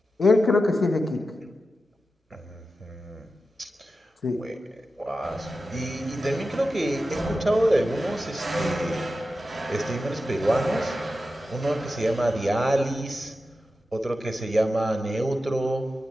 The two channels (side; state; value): both; normal; correlation 0.92